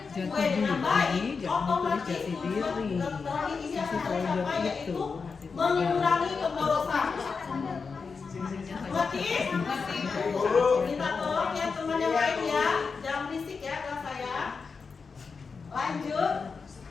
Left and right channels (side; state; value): right; quieter; 5.0 dB